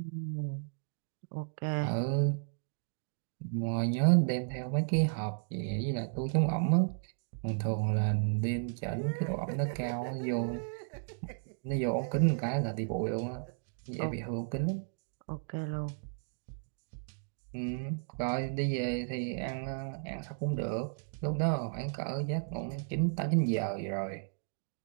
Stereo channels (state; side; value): silent; left; digital silence